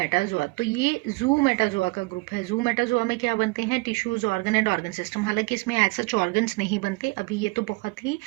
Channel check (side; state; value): left; quieter; 25.6 dB